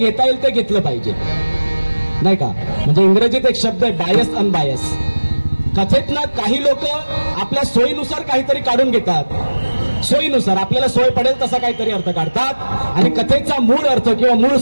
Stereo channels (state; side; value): inverted; both; correlation -1.00